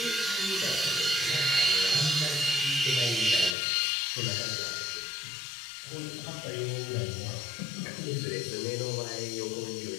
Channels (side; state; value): right; drops out; at 3.6 s